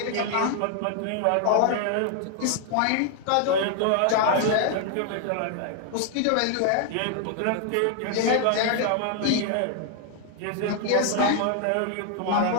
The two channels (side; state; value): both; different; correlation 0.00